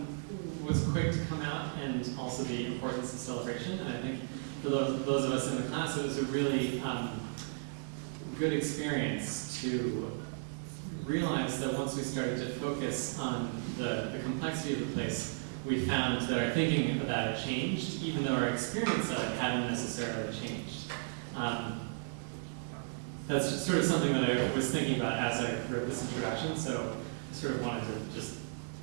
was quick to come out, and also the importance of celebration. And I think for those of us in the class, it was a really good experience to realize that once we started to focus on the complexity of the place, we found that our thinking about it changed, even though our experience of it hadn't necessarily changed. That's just sort of something that I was thinking about as I wrote this introduction, so I sort of wanted to just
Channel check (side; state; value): left; silent; digital silence